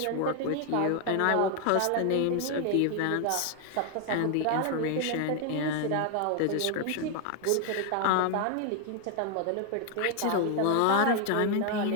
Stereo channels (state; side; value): different; both; correlation 0.00